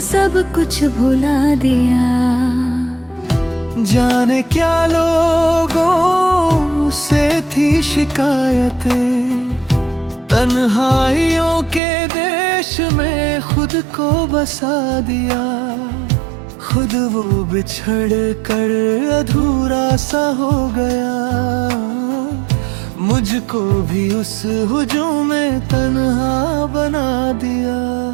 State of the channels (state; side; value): drops out; left; at 11.8 s